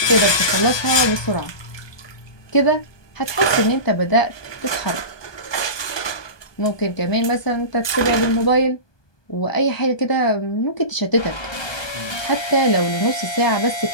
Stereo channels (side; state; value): right; late; 1.2 ms